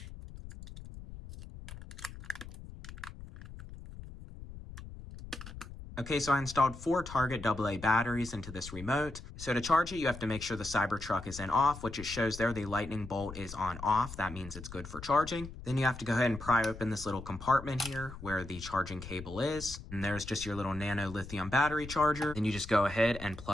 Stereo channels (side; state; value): left; noise; rumble, 13 dB below the sound